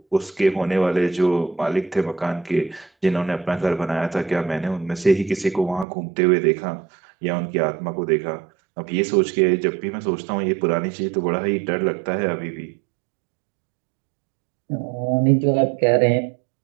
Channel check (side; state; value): left; drops out; at 5.9 s